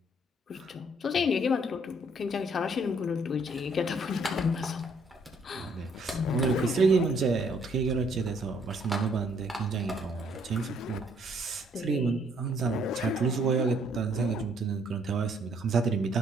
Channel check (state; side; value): normal; both; correlation 0.66